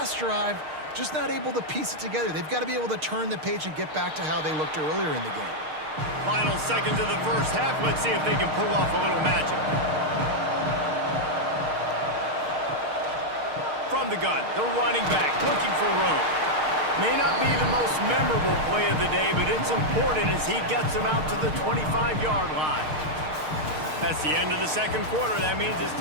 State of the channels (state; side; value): late; left; 6.5 ms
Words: drive, just not able to piece it together. They've got to be able to turn the page and get back to how they looked earlier in the game. Final seconds of the first half. Let's see if they can pull off a little magic. From the gun, the running back looking for room. May not be the most memorable play of the day, but it's important as he gets them out to the 25-yard line. That's the end of the second quarter. That means it's